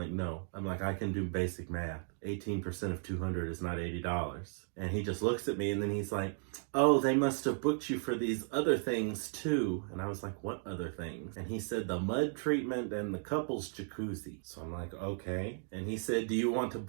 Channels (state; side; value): silent; left; 54 dB below the other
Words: no. I'm like, I can do basic math. 18% of $200 is not $80. And he just looks at me and then he's like, oh, they must have booked you for these other things too. And I was like, what other things? And he said the mud treatment and the couples jacuzzi. So I'm like, okay. And he said, do you want to